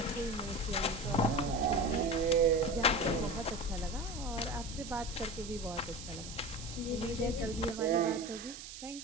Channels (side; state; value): right; noise; hiss, 12 dB below the sound